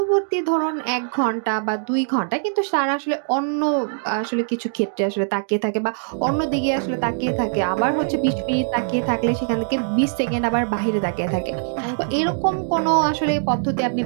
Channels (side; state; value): left; silent; digital silence